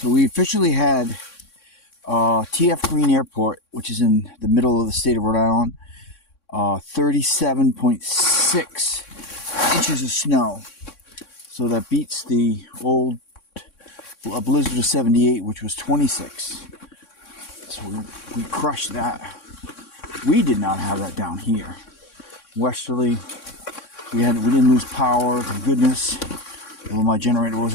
we officially had TF Green Airport, which is in the middle of the state of Rhode Island, 37.6 inches of snow. So that beats the old Blizzard of 78, which was 26. So we crushed that. We did not have that down here. Westerly, we didn't lose power, thank goodness. Well, my generator was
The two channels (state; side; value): late; right; 3.6 ms